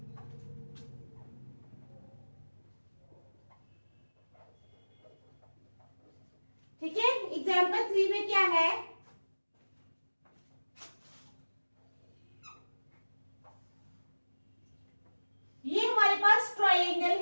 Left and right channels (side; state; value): both; inverted; correlation -1.00